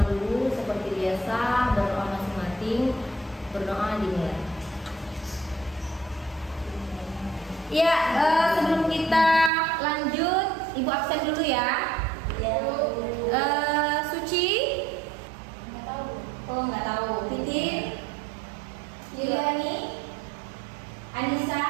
dulu seperti biasa, berdoa masing-masing, berdoa dimulai. Ya, sebelum kita lanjut, Ibu absen dulu ya. Suci? Nggak tahu. Oh, nggak tahu. Titin? Yuliani? Anissa?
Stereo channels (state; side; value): drops out; left; at 9.5 s